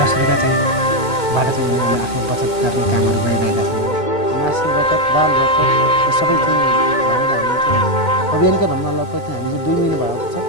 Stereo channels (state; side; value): late; right; 2.2 ms